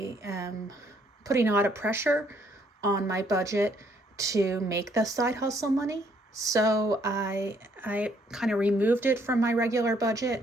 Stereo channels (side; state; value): both; normal; correlation 0.67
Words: am putting a lot of pressure on my budget to make the side hustle money. So I kind of removed it from my regular budget